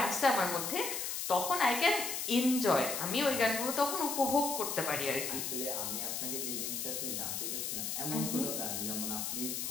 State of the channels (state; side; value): noise; left; hiss, 2 dB below the sound